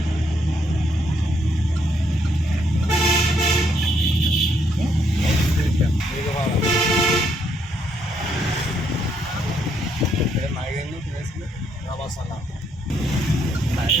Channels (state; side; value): normal; both; correlation 0.73